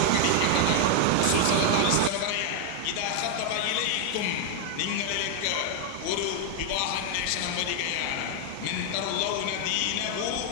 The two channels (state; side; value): different; both; correlation 0.00